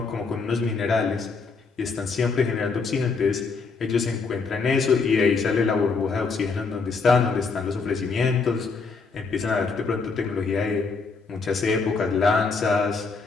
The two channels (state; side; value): quieter; right; 4.6 dB